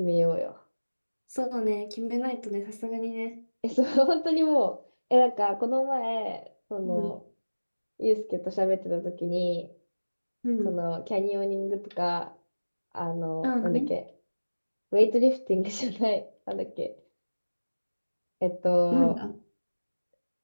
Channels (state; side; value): inverted; both; correlation -1.00